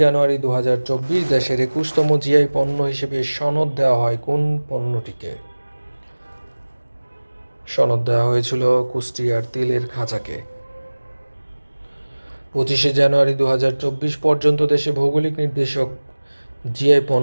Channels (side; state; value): both; inverted; correlation -1.00